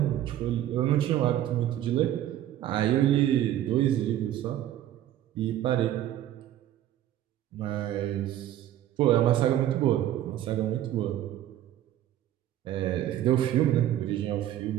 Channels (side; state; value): left; quieter; 12.4 dB